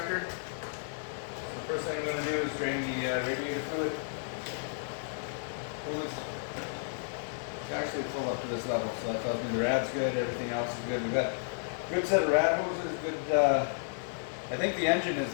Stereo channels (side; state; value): right; silent; digital silence